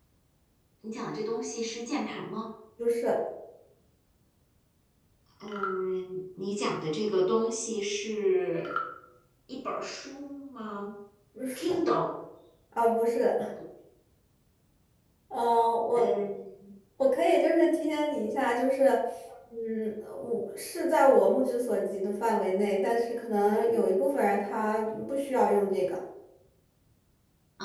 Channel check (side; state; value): both; identical; correlation 1.00